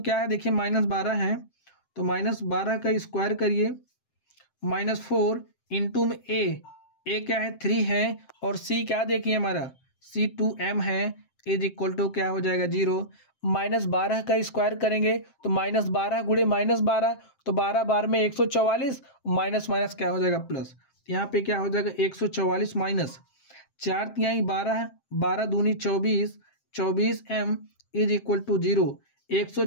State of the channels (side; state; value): right; late; 7.7 ms